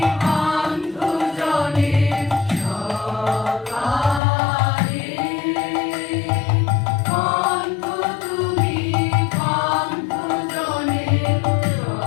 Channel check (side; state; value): right; drops out; at 4.2 s